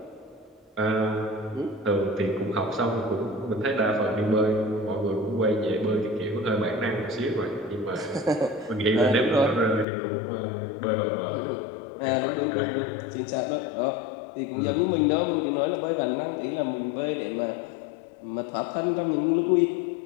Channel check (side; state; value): right; drops out; at 9.9 s